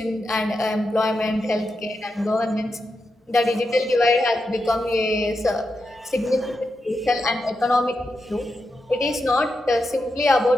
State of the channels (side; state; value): both; normal; correlation 0.87